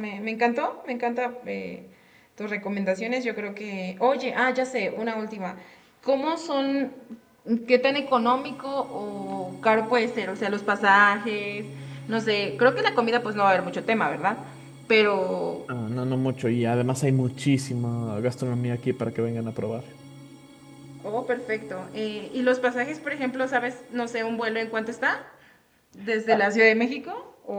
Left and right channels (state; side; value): identical; both; correlation 1.00